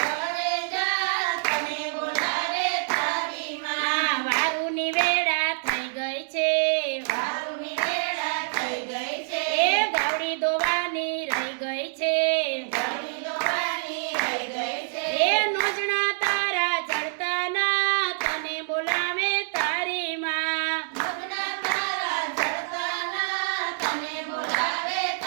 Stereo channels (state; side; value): silent; left; digital silence